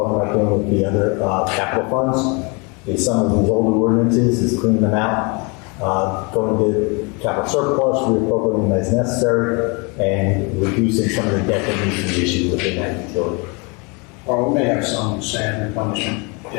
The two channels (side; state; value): right; quieter; 31.0 dB